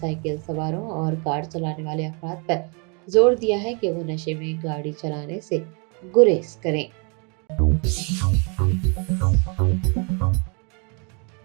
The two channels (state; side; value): quieter; left; 34.8 dB